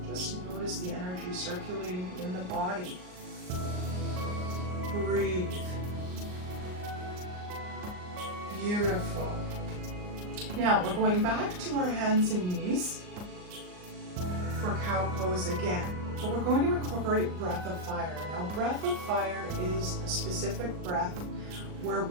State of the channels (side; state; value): left; late; 39 ms